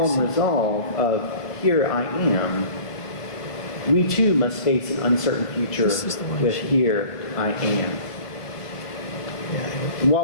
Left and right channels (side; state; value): right; late; 1.3 ms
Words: resolve of, "Here I am," we too must face an uncertain future with, "Here I am." And